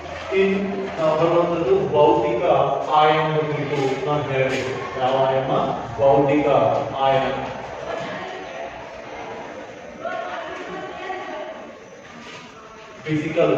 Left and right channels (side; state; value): both; identical; correlation 1.00